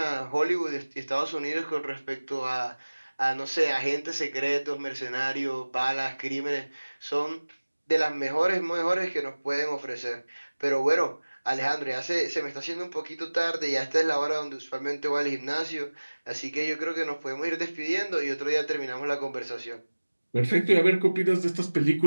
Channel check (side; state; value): both; inverted; correlation -1.00